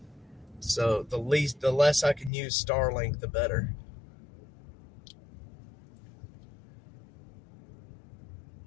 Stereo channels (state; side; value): drops out; right; at 2.3 s